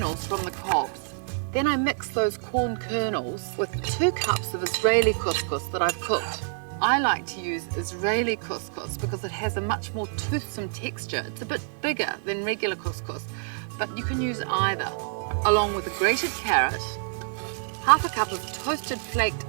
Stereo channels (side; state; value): left; silent; 60 dB below the other